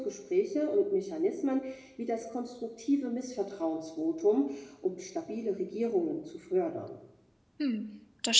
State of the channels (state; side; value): identical; both; correlation 1.00